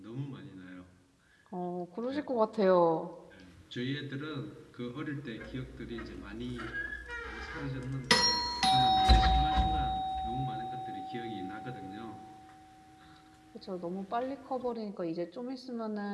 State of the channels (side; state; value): both; identical; correlation 1.00